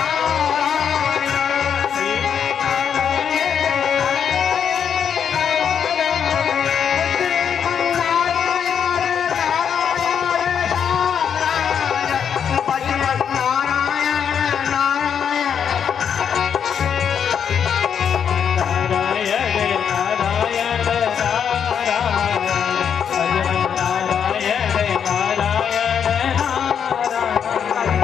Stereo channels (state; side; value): quieter; right; 7.8 dB